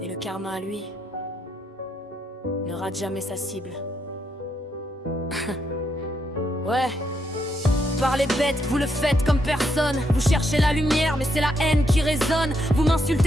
Et le karma, lui, ne rate jamais sa cible. Ouais. Parlez bête, vous le faites comme personne. Vous cherchez la lumière, mais c'est la haine qui résonne. Vous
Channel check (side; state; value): both; normal; correlation 0.78